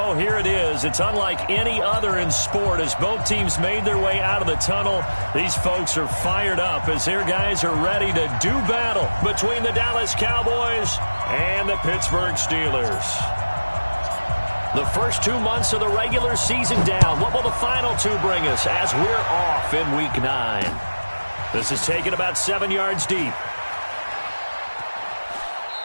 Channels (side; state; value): both; inverted; correlation -1.00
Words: here it is. It's unlike any other in sport as both teams made their way out of the tunnel. These folks are fired up as their guys are ready to do battle between the Dallas Cowboys and the Pittsburgh Steelers. The first 2 months of the regular season down. What will the final two bring us as we're off in Week 9? This is taken about 7 yards deep.